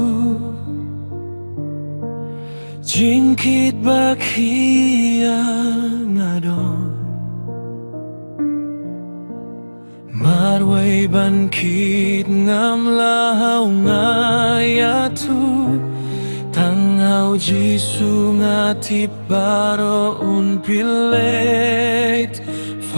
Jingkit bakia ngadon Marway bankit ngam lahau ngayatu Tangau Jisu ngati baro un pilet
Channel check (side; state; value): both; inverted; correlation -1.00